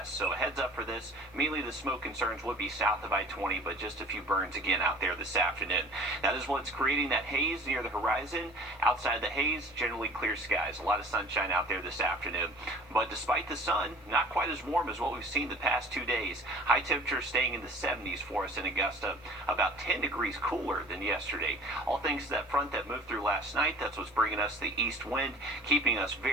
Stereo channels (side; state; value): both; normal; correlation 0.44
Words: So a heads up for this. Mainly the smoke concerns would be south of I-20, but just a few burns again out there this afternoon. That is what's creating that haze near the horizon. Outside the haze, generally clear skies. A lot of sunshine out there this afternoon. But despite the sun, not quite as warm as what we've seen the past 2 days. High temperatures staying in the 70s for us in Augusta. About 10 degrees cooler than yesterday. All thanks to that front that moved through last night. That's what's bringing us the east wind, keeping us